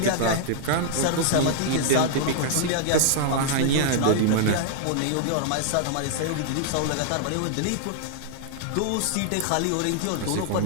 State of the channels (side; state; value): both; different; correlation -0.01